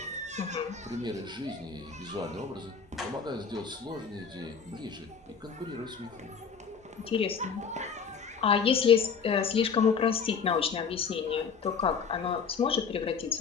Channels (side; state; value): right; quieter; 6.1 dB